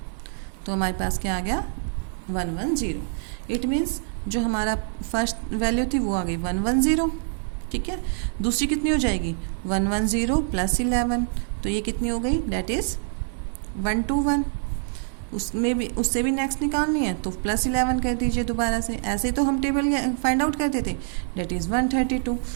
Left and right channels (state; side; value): silent; left; digital silence